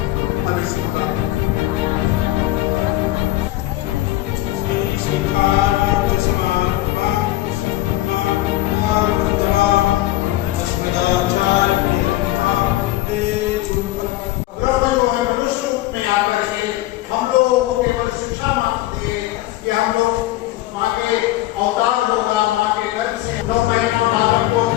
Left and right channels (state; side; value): quieter; right; 16.2 dB